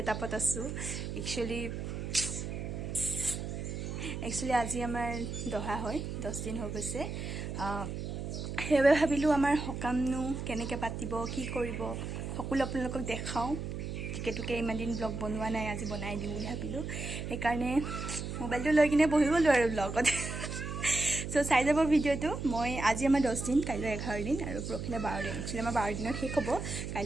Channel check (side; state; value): right; noise; hum, 5 dB below the sound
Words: আছো एक्चुअली आज आमार दहा है 10 दिन हो गए সেইবাবে ভাবিলোঁ আমাৰ সকামনো কেনেকৈ পাতিব কি কৰিব সকলো আপোনালোকক দেখাওঁ টিকেটুকে ইমান দিন ব্লগ বনোৱা নাই আজি বনাই দিওঁ বুলি ভাবিলোঁ সেইকাৰণে মোবাইলটো লৈ কিনে বহি গ'লোঁ আৰু ব্লগত সো চাই যাব ভিডিঅ'টো মই আজি আমাৰ 10 দিন কাইলৈ 11 দিন আৰু পৰহিলে 12 দিন একচুৱেলি আমাৰ 12 দিনত শেষ হ'ব